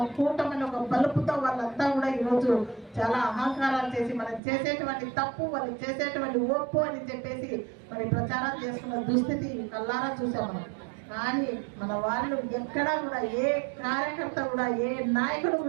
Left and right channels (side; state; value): left; drops out; at 4.4 s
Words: కూటమని ఒక బలుపుతో వాళ్ళంతా కూడా ఈరోజు చాలా అహంకారాలు చేసి మనం చేసేటువంటి తప్పు, వాళ్ళు చేసేటువంటి ఒప్పు అని చెప్పేసి మరి ప్రచారం చేసుకున్న దుస్థితి కల్లారా చూసాం మనం. కానీ మన వాళ్ళు ఎక్కడా కూడా ఏ కార్యకర్త కూడా, ఏ నాయకుడు